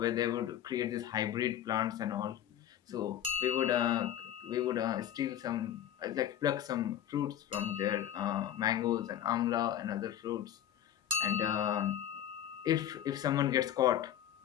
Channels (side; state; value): right; quieter; 10.9 dB